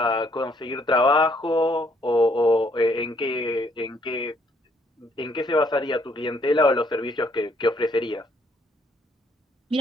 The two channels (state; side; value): normal; both; correlation 0.68